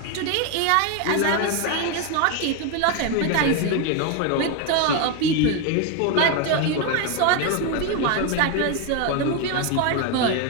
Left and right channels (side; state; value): both; different; correlation 0.02